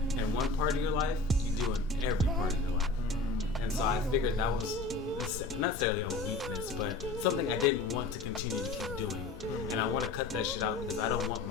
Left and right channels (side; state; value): right; quieter; 3.4 dB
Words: in one part of your life, you do in every part of your life. And so I figured that was not necessarily a weakness, but something I didn't want to continue to keep doing. And I want to cut that shit out because I don't want